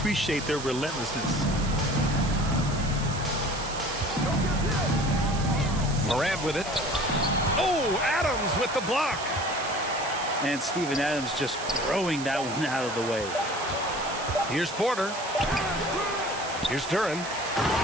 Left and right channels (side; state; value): right; noise; hiss, 11 dB below the sound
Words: their relentlessness. Morant with it. Oh, Adams with the block. And Steven Adams just throwing that one out of the way. Here's Porter. Here's Duran.